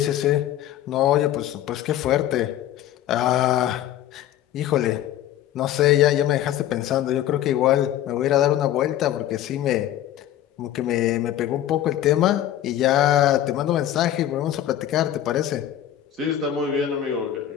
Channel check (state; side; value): quieter; right; 12.0 dB